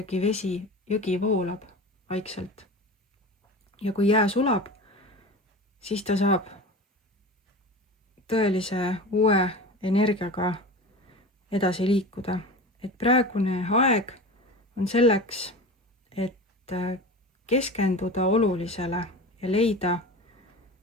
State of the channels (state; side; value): normal; both; correlation 0.32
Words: vesi, jõgi voolab vaikselt. Ja kui jää sulab, siis ta saab tõelise uue energiaga edasi liikuda. Et praegune aeg on selleks, et keskenduda olulisele ja leida